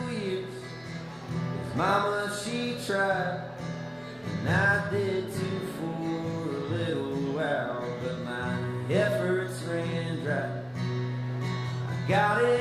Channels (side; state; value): left; noise; hum, 29 dB below the sound